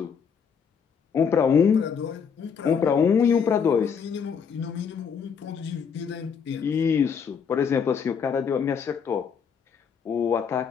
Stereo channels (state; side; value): quieter; right; 6.7 dB